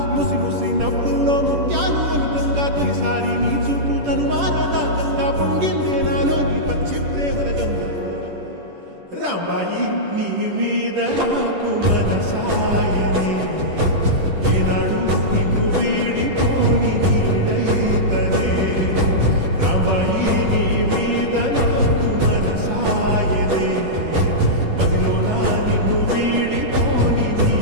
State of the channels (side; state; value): left; late; 10 ms